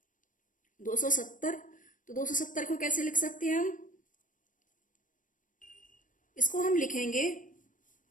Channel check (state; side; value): late; right; 0.38 ms